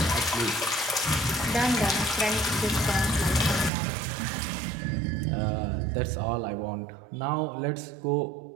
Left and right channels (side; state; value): left; drops out; at 3.7 s